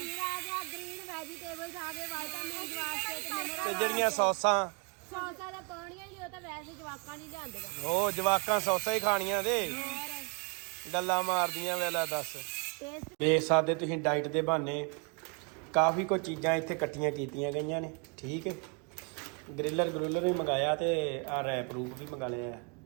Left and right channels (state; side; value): quieter; left; 35.0 dB